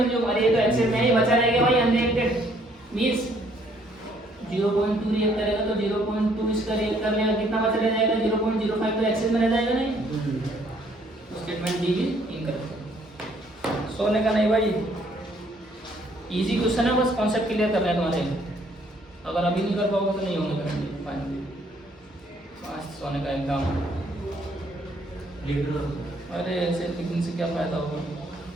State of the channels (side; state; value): both; normal; correlation 0.65